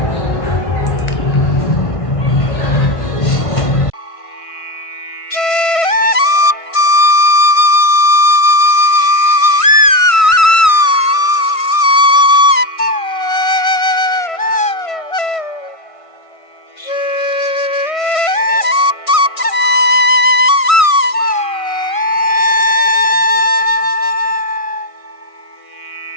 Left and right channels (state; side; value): late; right; 1.5 ms